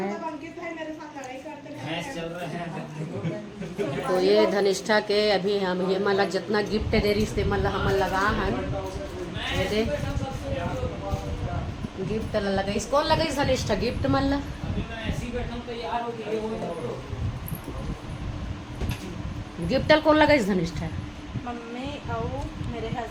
अंकित भाई मेरे साथ लड़ाई करते हैं। भैंस चल रहा है। तो ये धनिष्ठा के अभी हम ये मतलब जितना गिफ्ट दे रही से मतलब हम लगा हन ये दे गिफ्ट लगा। कौन लगा धनिष्ठा गिफ्ट मतलब ऐसी बैठा तैयार हो गई वो। गिफ्ट कौन लगा धनिष्ठा? मम्मी और मेरे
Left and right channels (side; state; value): both; identical; correlation 1.00